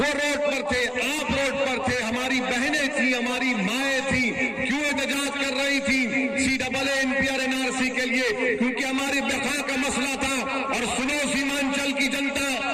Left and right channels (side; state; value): both; identical; correlation 1.00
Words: रोड पर थे, आप रोड पर थे, हमारी बहनें थी, हमारी माएं थी, क्यों एहतजाज कर रही थी सीएए, एनपीआर, एनआरसी के लिए? क्योंकि हमारी बका का मसला था। और सुनो सीमांचल की जनता,